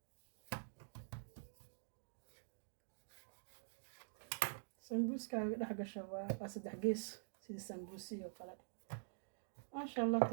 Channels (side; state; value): left; silent; digital silence